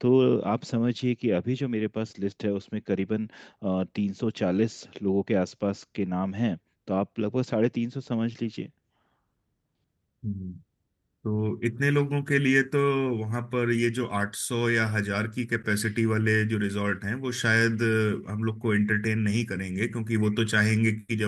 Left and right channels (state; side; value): identical; both; correlation 1.00